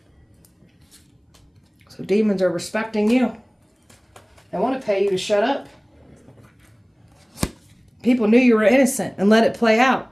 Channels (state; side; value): identical; both; correlation 1.00